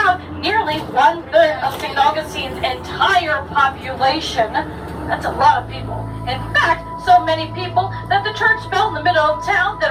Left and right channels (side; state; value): both; identical; correlation 1.00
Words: nearly 1/3 of St. Augustine's entire population. That's a lot of people. In fact, so many people that the church bell in the middle of town